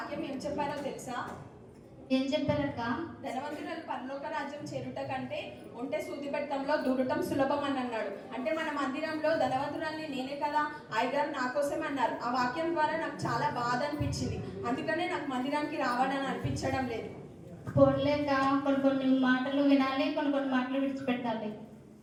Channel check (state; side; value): identical; both; correlation 1.00